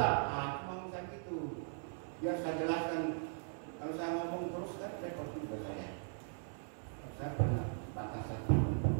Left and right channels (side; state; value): left; silent; 52 dB below the other